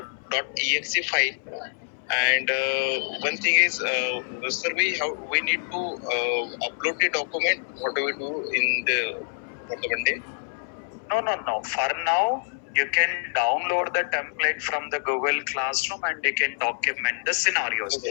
.exe file? And one thing is, sir, we need to upload the document. What do we do for the Monday? No. For now, you can download the template from the Google Classroom and you can document the scenarios.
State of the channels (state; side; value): silent; right; 61 dB below the other